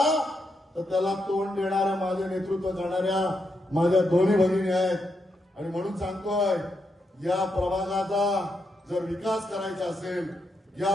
तर त्याला तोंड देणाऱ्या, माझे नेतृत्व करणाऱ्या माझ्या दोन्ही भगिनी आहेत. आणि म्हणून सांगतोय, या प्रभागाचा जर विकास करायचा असेल, या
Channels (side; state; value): both; normal; correlation 0.82